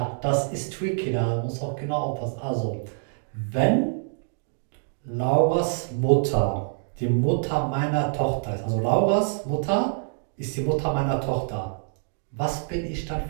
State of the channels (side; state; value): left; silent; digital silence